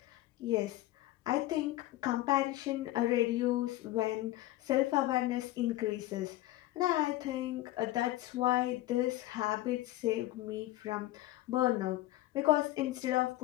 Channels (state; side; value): quieter; right; 16.3 dB